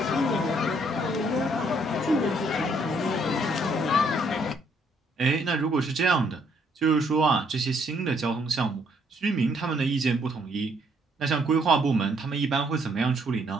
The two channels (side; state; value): both; normal; correlation 0.68